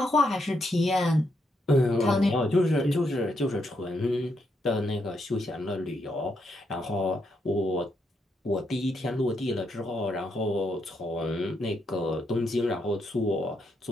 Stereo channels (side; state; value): both; normal; correlation 0.78